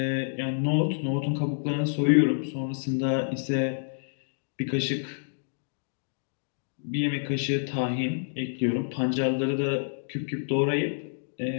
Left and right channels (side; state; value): right; silent; digital silence